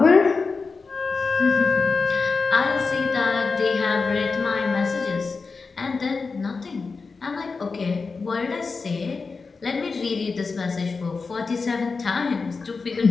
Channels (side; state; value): right; quieter; 4.5 dB